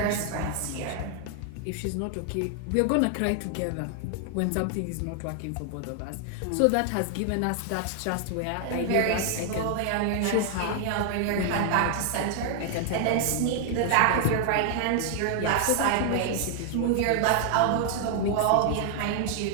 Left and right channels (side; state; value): both; different; correlation 0.00